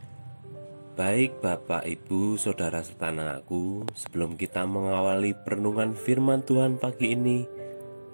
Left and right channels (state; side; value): inverted; both; correlation -1.00